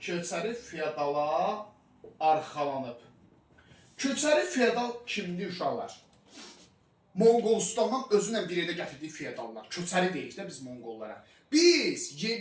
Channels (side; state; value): both; identical; correlation 1.00